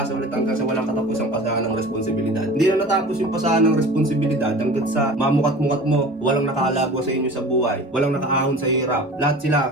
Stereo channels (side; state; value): both; normal; correlation 0.39